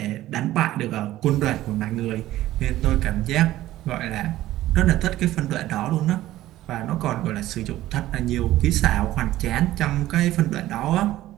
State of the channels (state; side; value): quieter; left; 15.0 dB